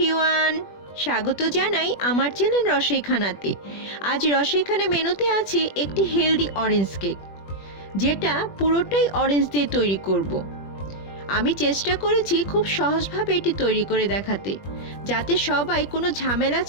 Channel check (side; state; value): right; late; 21 ms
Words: স্বাগত জানাই আমার চ্যানেল রসইখানাতে। আজ রসইখানা মেনুতে আছে একটি হেলদি অরেঞ্জ কেক, যেটা পুরোটাই অরেঞ্জ দিয়ে তৈরি করব। আমি চেষ্টা করেছি খুব সহজভাবে এটি তৈরি করে দেখাতে, যাতে সবাই কোনো ঝামেলা